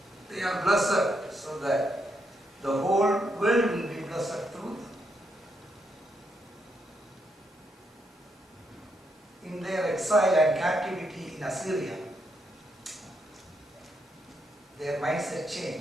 They are blessed so that the whole world will be blessed through them. In their exile and captivity in Assyria, their mindset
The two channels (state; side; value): normal; both; correlation 0.79